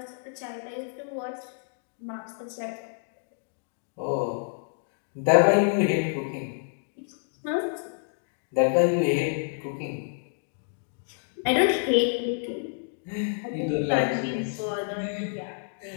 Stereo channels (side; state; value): right; silent; digital silence